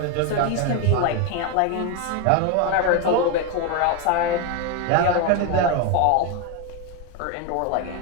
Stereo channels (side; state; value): both; different; correlation 0.02